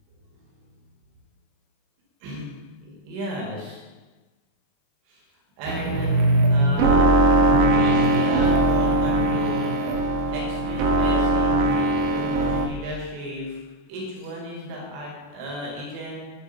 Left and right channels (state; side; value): late; left; 21 ms